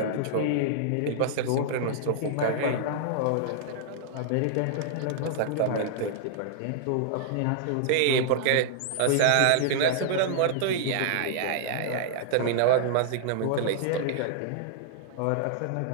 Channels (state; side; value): different; both; correlation -0.01